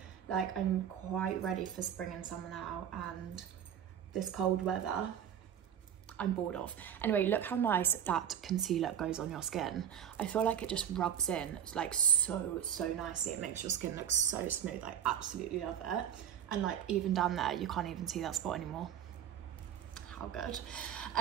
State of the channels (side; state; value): left; quieter; 9.3 dB